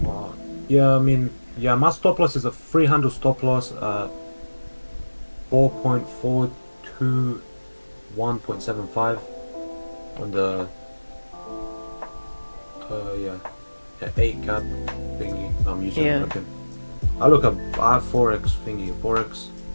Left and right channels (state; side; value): inverted; both; correlation -1.00